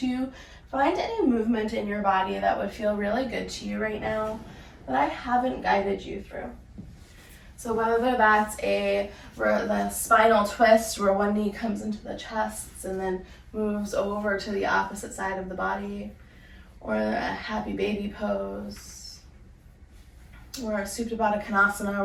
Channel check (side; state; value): both; identical; correlation 1.00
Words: find any movement in your body that would feel really good to you right now that I haven't guided you through. So whether that's the spinal twist where one knee comes into the chest and then moves over to the opposite side of the body, or a happy baby pose, or a Supta Baddha Konasana